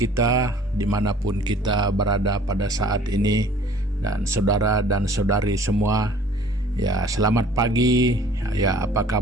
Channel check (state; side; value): normal; both; correlation 0.52